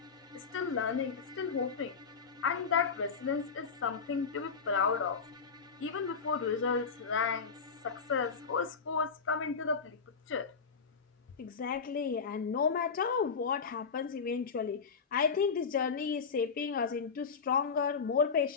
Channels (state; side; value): quieter; right; 5.5 dB